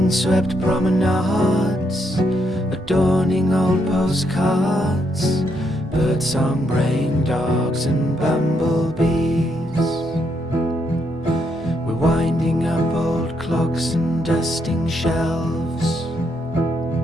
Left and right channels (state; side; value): normal; both; correlation 0.77